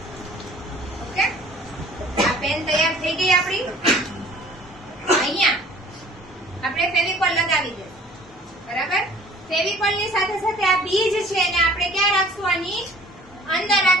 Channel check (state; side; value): normal; both; correlation 0.51